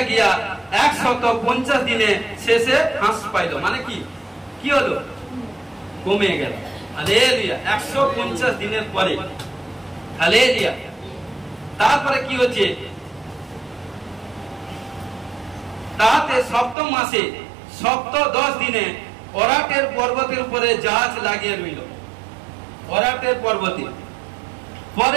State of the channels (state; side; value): drops out; left; at 16.8 s